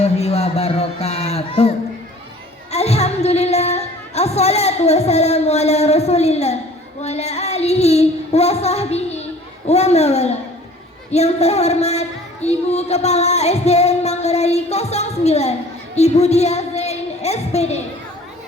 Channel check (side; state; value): both; normal; correlation 0.49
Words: wabarakatuh. Alhamdulillah, assalatu wassalamu ala rasulillah wa ala alihi wa sahbihi wa mawala. Yang terhormat Ibu Kepala SDN Manggarai 09, Ibu Dia Zain SPD,